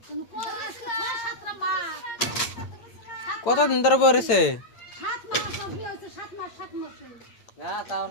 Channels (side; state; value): right; late; 8.8 ms